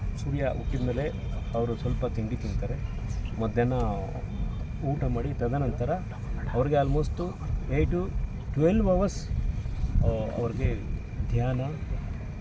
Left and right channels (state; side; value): identical; both; correlation 1.00